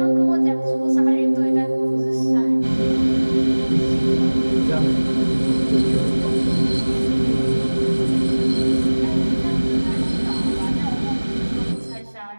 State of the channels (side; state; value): both; inverted; correlation -1.00